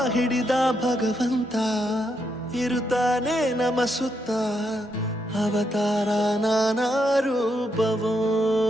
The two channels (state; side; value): normal; both; correlation 0.80